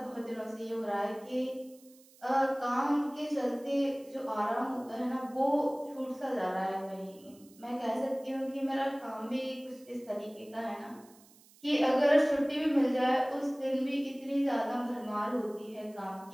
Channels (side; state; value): right; noise; hiss, 26 dB below the sound